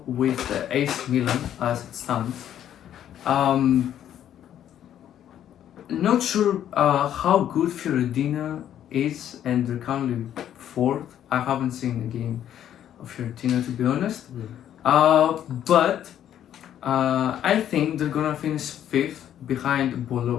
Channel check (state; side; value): quieter; right; 10.6 dB